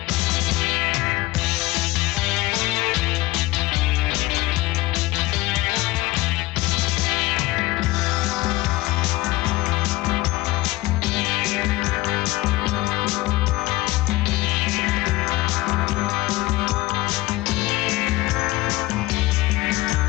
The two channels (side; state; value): right; quieter; 19.4 dB